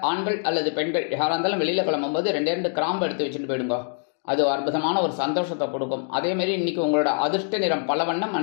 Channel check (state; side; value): silent; right; 56 dB below the other